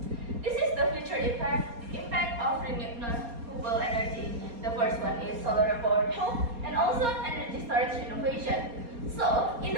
This is the future impact of renewable energy. The first one is solar powered home and also energy storage innovation. So, in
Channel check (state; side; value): late; left; 4.3 ms